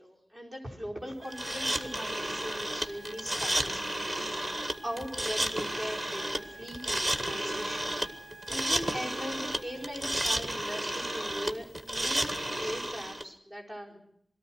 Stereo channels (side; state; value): both; normal; correlation 0.96